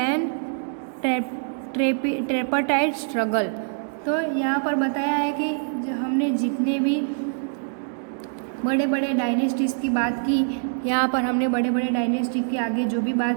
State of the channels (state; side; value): silent; left; digital silence